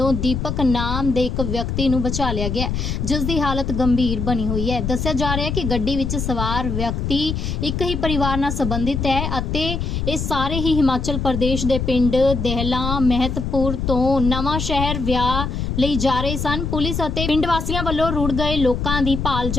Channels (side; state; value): left; noise; rumble, 2 dB below the sound